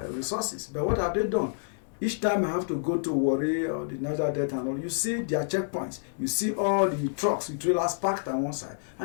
But what have they done? Each time I have to go to Warri or the Niger Delta and all, you see their checkpoints. You see all the trucks with trailers parked on one side,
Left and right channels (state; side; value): silent; right; digital silence